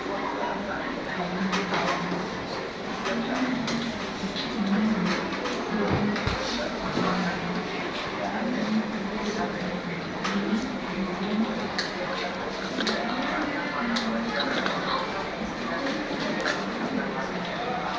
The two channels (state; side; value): identical; both; correlation 1.00